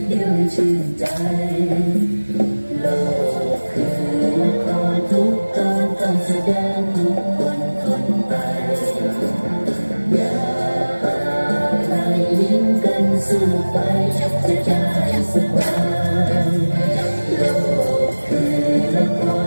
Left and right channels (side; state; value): both; inverted; correlation -1.00